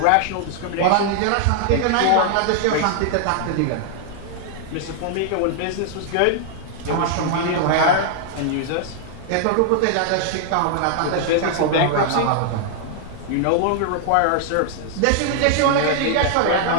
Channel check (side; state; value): both; different; correlation 0.00